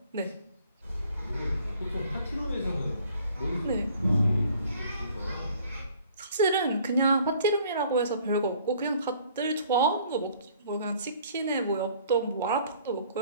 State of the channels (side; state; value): both; inverted; correlation -0.56